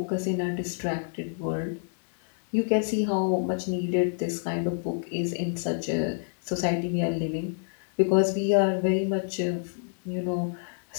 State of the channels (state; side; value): silent; right; 60 dB below the other